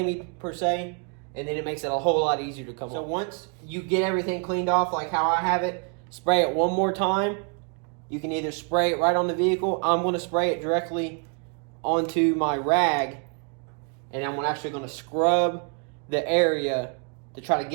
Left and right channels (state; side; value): quieter; left; 39.7 dB